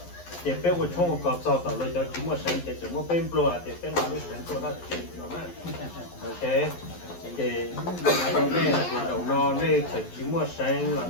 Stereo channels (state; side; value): late; right; 11 ms